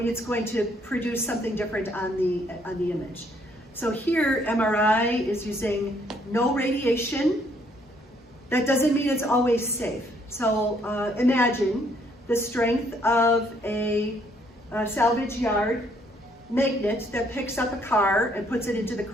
going to produce something different on the image. So here, MRI is using no radiation. That doesn't mean it's always safe. So imagine the strength of a salvage yard magnet that picks up a car and puts it into the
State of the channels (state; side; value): normal; both; correlation 0.67